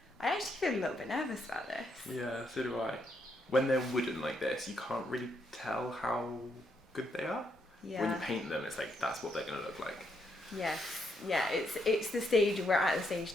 I actually feel a little bit nervous about this. Yeah, so do I. When they're wooden like this, you can't really tell how good they are. Yeah. When you paint them, it's like, that's what they're gonna look like. Yes. Yeah, it's the stage, we're at the stage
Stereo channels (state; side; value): normal; both; correlation 0.77